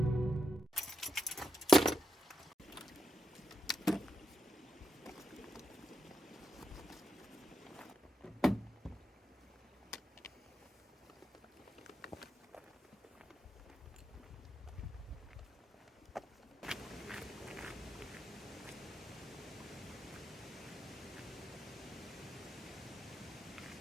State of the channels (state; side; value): normal; both; correlation 0.85